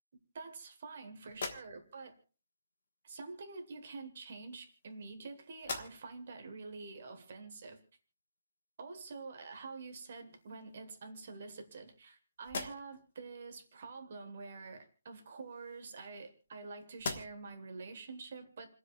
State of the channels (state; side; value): inverted; both; correlation -0.76